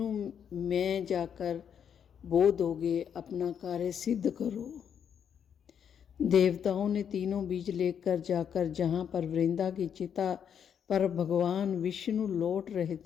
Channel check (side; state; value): right; quieter; 8.1 dB